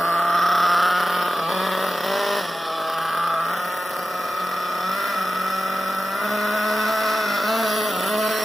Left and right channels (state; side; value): normal; both; correlation 0.94